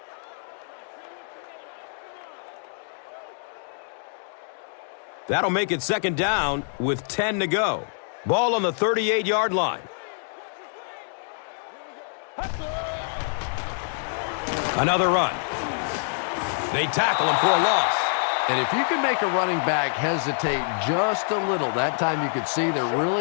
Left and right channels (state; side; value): silent; right; 61 dB below the other